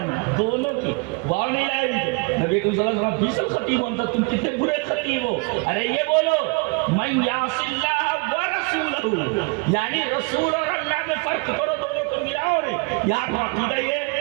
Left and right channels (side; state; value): left; quieter; 29.6 dB